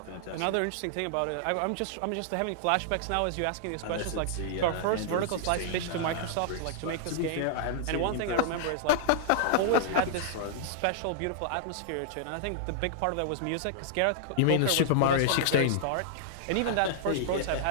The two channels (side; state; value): both; different; correlation -0.01